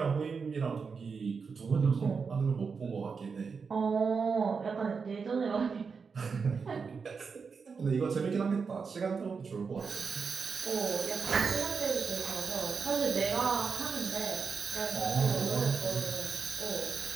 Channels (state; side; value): quieter; left; 5.4 dB